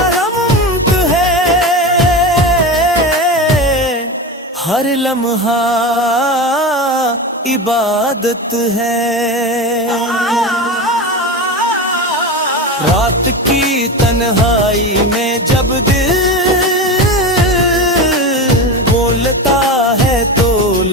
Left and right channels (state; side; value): normal; both; correlation 0.23